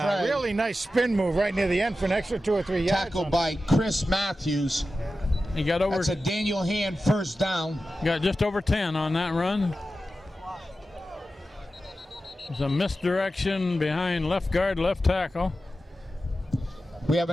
Frey. really nice spin move right near the end for an extra 2 or 3 yards. Tackled by Chris Matthews. He got over. That's a Daniel Hand first down. Got just over 10 on that run. There's a misdirection behind left guard, left tackle. We have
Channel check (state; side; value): normal; both; correlation 0.93